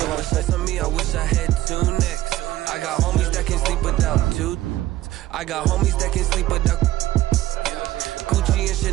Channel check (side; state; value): left; quieter; 15.1 dB